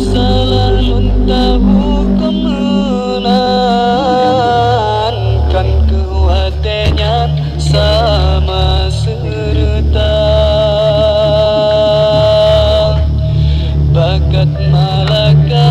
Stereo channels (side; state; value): both; identical; correlation 1.00